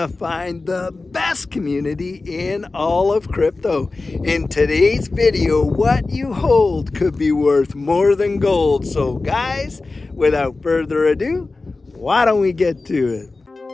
find the best community in all of crypto. In today's video, what you hold could be worth more than gold. So guys, without further ado, why don't we get to it?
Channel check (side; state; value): right; quieter; 3.5 dB